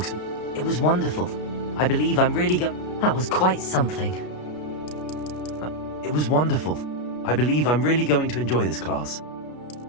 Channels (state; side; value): late; right; 33 ms